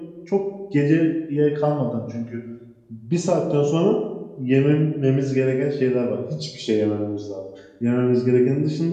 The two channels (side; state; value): both; identical; correlation 1.00